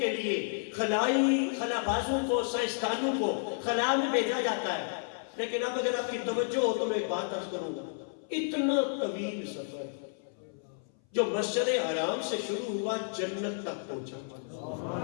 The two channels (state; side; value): silent; right; 57 dB below the other